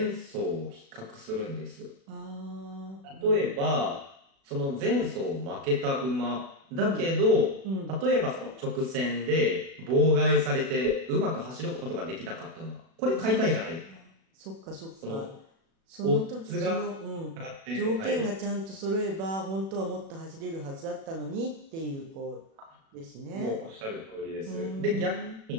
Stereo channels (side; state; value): left; late; 36 ms